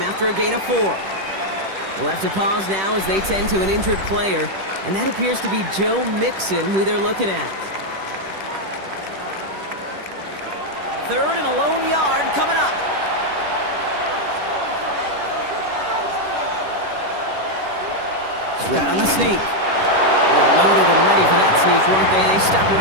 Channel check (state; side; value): late; left; 10 ms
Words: after a gain of 4. We'll have to pause now as they tend to an injured player, and that appears to be Joe Mixon, who they're looking at. 3rd and a lone yard coming up. Right on the sneak. They're loaded and ready for that sneak, weren't they? They stopped him